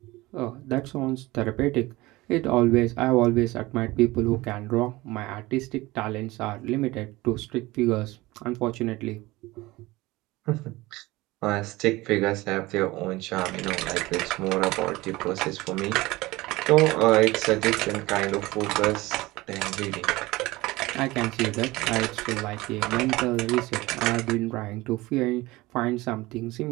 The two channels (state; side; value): quieter; left; 20.1 dB